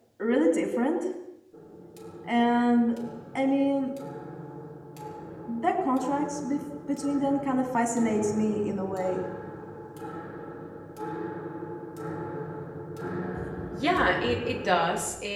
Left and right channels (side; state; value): both; identical; correlation 1.00